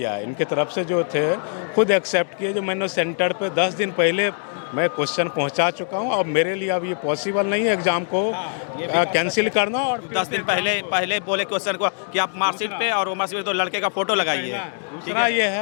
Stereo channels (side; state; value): right; silent; 63 dB below the other